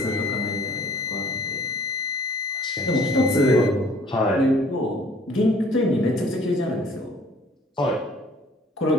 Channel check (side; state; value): both; normal; correlation 0.55